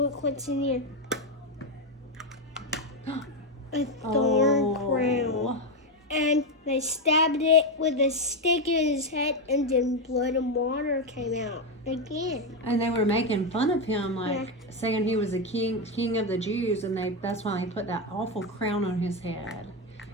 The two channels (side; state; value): both; normal; correlation 0.08